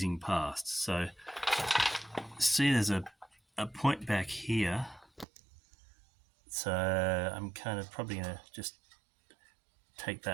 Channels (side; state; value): left; drops out; at 5.2 s